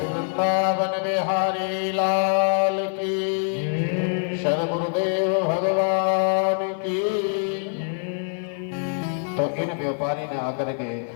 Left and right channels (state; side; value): silent; right; 62 dB below the other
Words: बिहारी लाल की, सदगुरुदेव भगवान की। तो इन व्यापारी ने आकर के